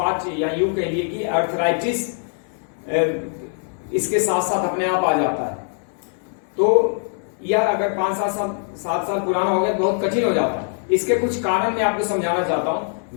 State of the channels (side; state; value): right; silent; 56 dB below the other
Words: या यूं कह लिए कि अर्थराइटिस इसके साथ साथ अपने आप आ जाता है। तो यह अगर 5-7 साल पुराना हो गया तो बहुत कठिन हो जाता है। इसके कुछ कारण मैं आपको समझाना चाहता